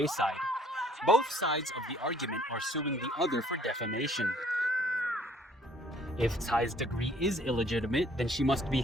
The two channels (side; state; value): both; normal; correlation 0.60